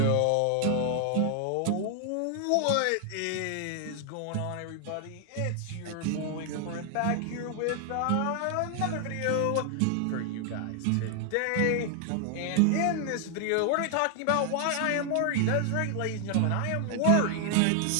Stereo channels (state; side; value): different; both; correlation 0.00